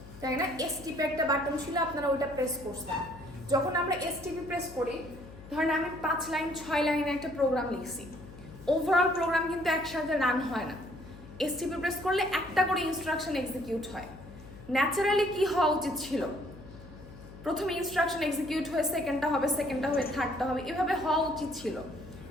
তাই না? এসটিপি একটা বাটন ছিল, আপনারা ওইটা প্রেস করছেন। যখন আমরা এসটিপি প্রেস করি, ধরেন আমি 5 লাইন 6 লাইনে একটা প্রোগ্রাম লিখছি, ওভারঅল প্রোগ্রাম কিন্তু একসাথে রান হয় না। এসটিপি প্রেস করলে একটা করে ইনস্ট্রাকশন এক্সিকিউট হয়। ন্যাচারালি কি হওয়া উচিত ছিল? প্রথমে ইনস্ট্রাকশন এক্সিকিউট হয়ে সেকেন্ডটা হবে, সেকেন্ডটা হয়ে থার্ডটা হবে, এভাবে হওয়া উচিত ছিল।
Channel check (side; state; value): left; noise; hum, 17 dB below the sound